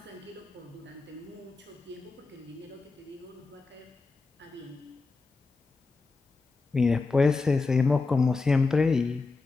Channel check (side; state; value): right; quieter; 3.9 dB